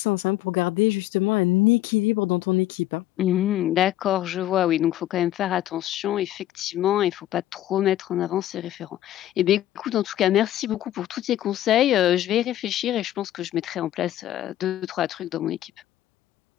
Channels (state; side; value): quieter; right; 13.5 dB